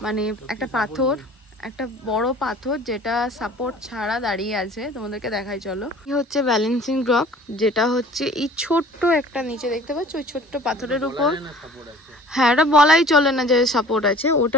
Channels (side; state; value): both; normal; correlation 0.47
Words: মানে একটা পাথর, একটা বড় পাথর যেটা সাপোর্ট ছাড়া দাঁড়িয়ে আছে। তোমাদেরকে দেখাই চলো। এই হচ্ছে ব্যালেন্সিং রক, যেটা হচ্ছে এই ছোট্ট একটা নিচে দেখতে পাচ্ছ ওই ছোট্ট পাথরের উপর। হ্যাঁ, এটা বলাই চলে না যে সাপোর্ট আছে,